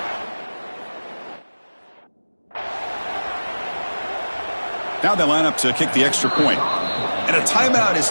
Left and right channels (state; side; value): inverted; both; correlation -1.00